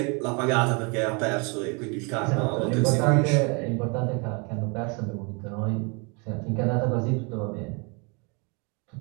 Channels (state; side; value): quieter; left; 32.4 dB